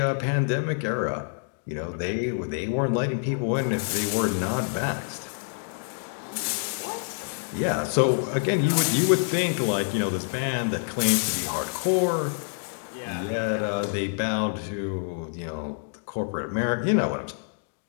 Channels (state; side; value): silent; right; digital silence